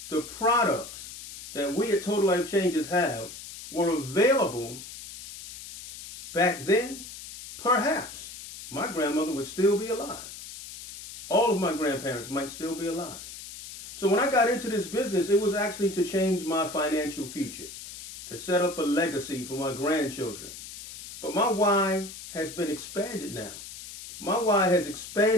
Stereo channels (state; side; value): noise; left; hiss, 13 dB below the sound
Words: the products that we at Total Life Changes have were available back then, perhaps my grandmother would still be alive. All of my grandparents might still be alive. So when I got into this business, it was actually to change my financial future, to set up a legacy for my grandchildren. But my why has been expanded now. My why has